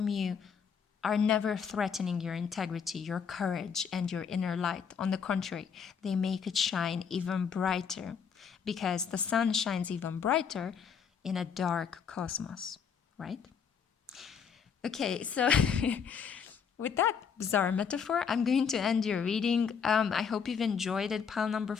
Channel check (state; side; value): quieter; right; 6.7 dB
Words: you are never threatening your integrity, your courage, and your inner light. On the contrary, they make it shine even brighter, because the sun shines even brighter in a dark cosmos, right? Okay, so with that bizarre metaphor, I'm going to end your reading. I hope you've enjoyed it. Pile number